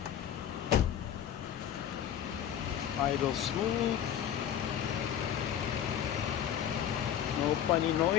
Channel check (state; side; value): quieter; right; 9.8 dB